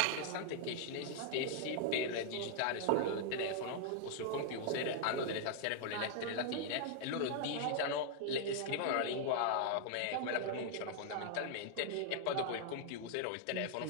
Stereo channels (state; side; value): different; both; correlation -0.01